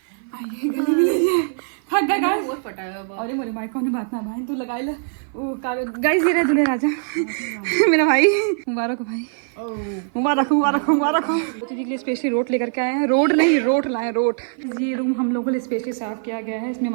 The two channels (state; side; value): silent; left; 55 dB below the other